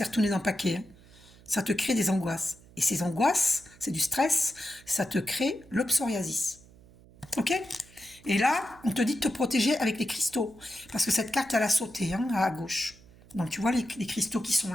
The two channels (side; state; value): right; noise; hum, 24 dB below the sound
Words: retournée dans le paquet. Hein. Ça te crée des angoisses. Et ces angoisses, c'est du stress, ça te crée le psoriasis. Ok? Et là, on te dit de te protéger avec les cristaux. Parce que cette carte, elle a sauté, hein, à gauche. Donc, tu vois les cristaux qui sont